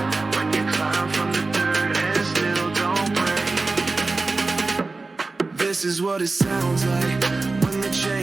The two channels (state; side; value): quieter; left; 3.6 dB